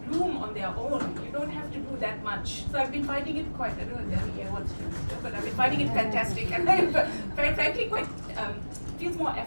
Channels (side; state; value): both; inverted; correlation -1.00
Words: bloom on their own. You don't have to do that much. So I've been finding it quite, I don't know if wants to, but I've been finding it fantastic. And I'm frankly quite, feels more